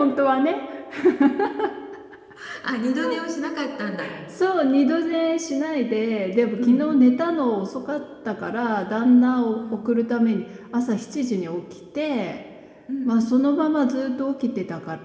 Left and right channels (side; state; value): both; identical; correlation 1.00